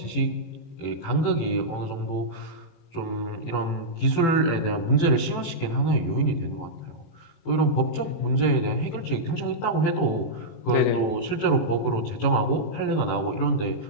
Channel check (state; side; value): late; right; 18 ms